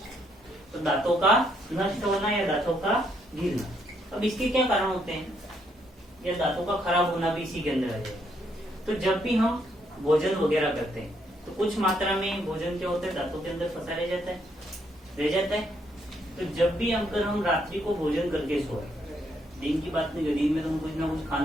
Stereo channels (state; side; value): normal; both; correlation 0.73